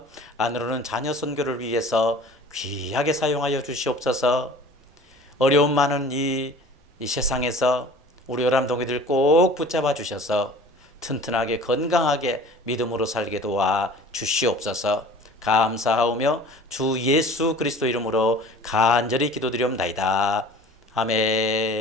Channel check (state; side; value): normal; both; correlation 0.45